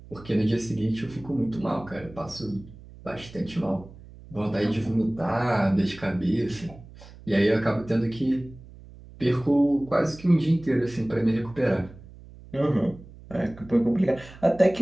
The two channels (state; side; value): noise; right; hum, 19 dB below the sound